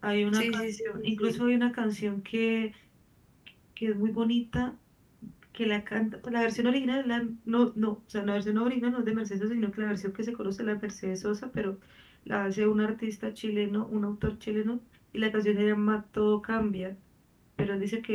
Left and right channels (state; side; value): identical; both; correlation 1.00